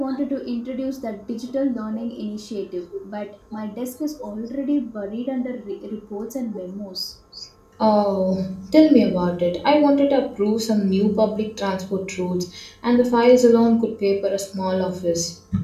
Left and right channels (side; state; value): both; identical; correlation 1.00